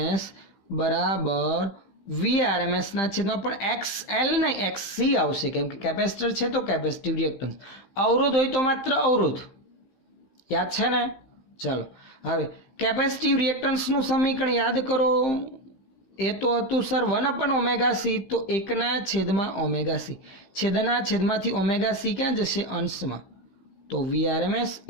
બરાબર VRMS ના છેદમાં પણ XL નહીં XC આવશે કેમ કે કેપેસિટર છે તો કેપેસિટિવ રિએક્ટન્સ. અવરોધ હોય તો માત્ર અવરોધ, યાદ છે ને. ચલો હવે કેપેસિટિવ રિએક્ટન્સનું સમીકરણ યાદ કરો. એ તો હતું સર 1/ωc તો 1/ωc. છેદના છેદમાંથી ωc ક્યાં જશે અંશમાં તો VRMS ×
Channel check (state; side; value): late; right; 16 ms